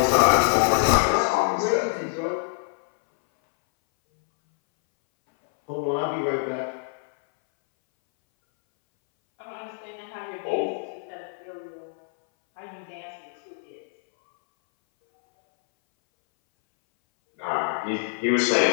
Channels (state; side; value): silent; right; 61 dB below the other